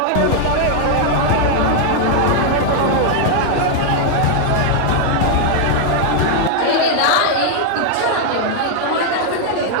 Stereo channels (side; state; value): both; different; correlation 0.00